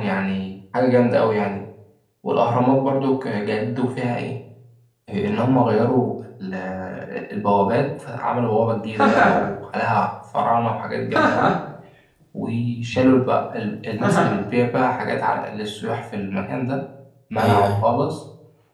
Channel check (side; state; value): both; identical; correlation 1.00